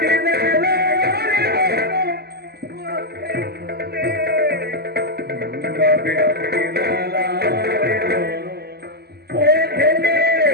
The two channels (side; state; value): left; late; 0.46 ms